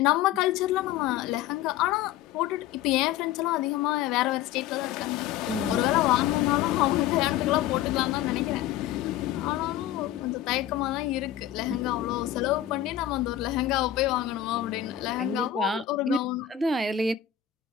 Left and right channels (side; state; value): right; quieter; 11.3 dB